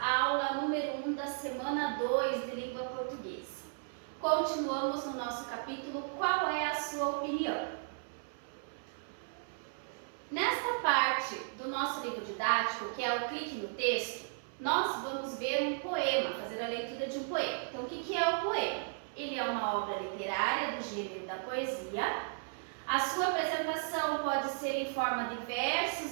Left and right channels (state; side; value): silent; left; 54 dB below the other